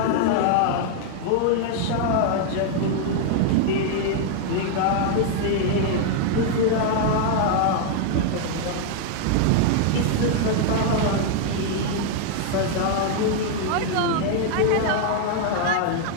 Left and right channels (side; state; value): both; different; correlation 0.00